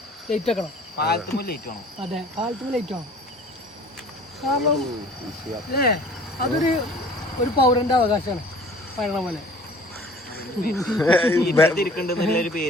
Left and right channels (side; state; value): both; normal; correlation 0.49